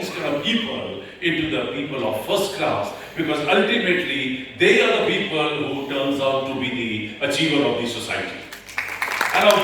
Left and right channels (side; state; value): both; identical; correlation 1.00